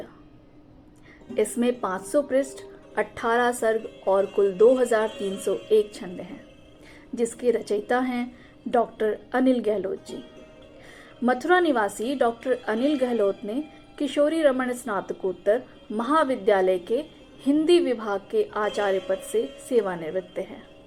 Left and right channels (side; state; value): both; identical; correlation 1.00